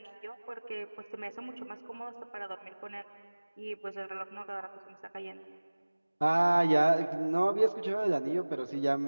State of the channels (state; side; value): inverted; both; correlation -1.00